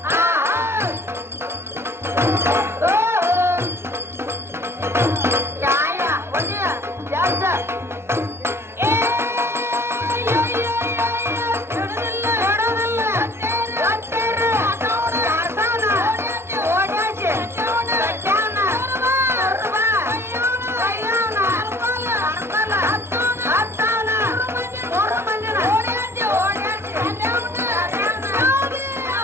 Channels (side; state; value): left; late; 0.12 ms